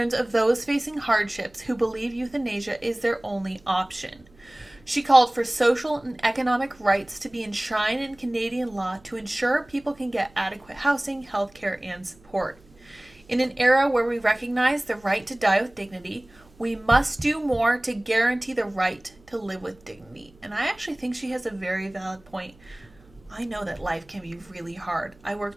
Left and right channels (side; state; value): right; noise; hum, 28 dB below the sound